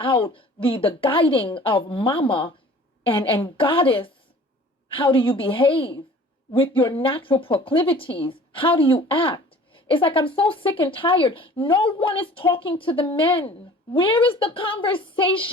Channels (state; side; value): normal; both; correlation 0.47